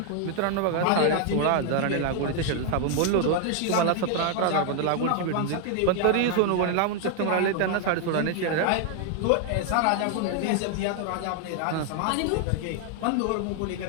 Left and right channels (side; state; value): both; different; correlation 0.00